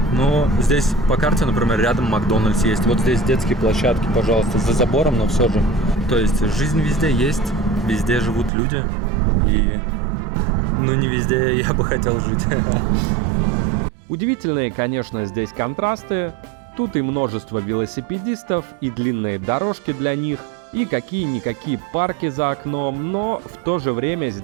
Но здесь по карте, например, рядом Макдональдс есть. Вот здесь детские площадки, пожалуйста, за забором, но все же. То есть жизнь везде есть, везде живут люди. И ну не везде я бы хотел жить. Удивительные, конечно, здесь контрасты. Тут и множество велосипедистов, и длинные дорожки для них, и какие-никакие парки за окном, но в то же время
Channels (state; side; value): drops out; left; at 8.5 s